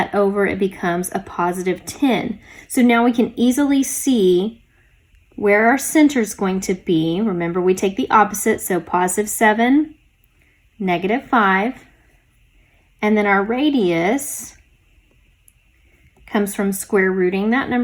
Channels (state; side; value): identical; both; correlation 1.00